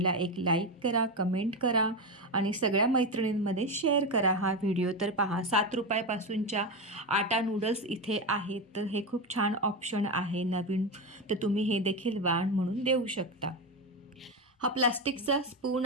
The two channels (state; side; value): normal; both; correlation 0.15